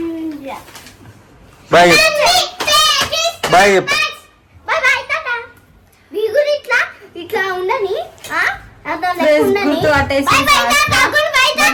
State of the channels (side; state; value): both; identical; correlation 1.00